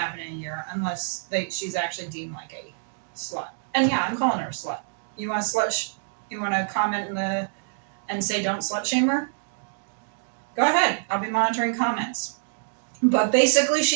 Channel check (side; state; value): left; silent; digital silence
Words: in a year unless she's actually deemed like a slut. And yeah, I'm calling her a slut. You want to comment and say don't slut shame her? Go ahead. I'll be monitoring comments. But basically